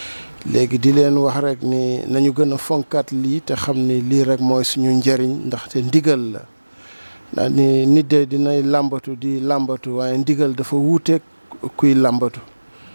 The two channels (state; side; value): inverted; both; correlation -1.00